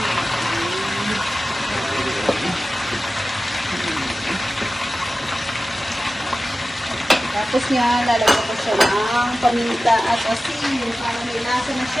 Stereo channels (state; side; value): normal; both; correlation 0.95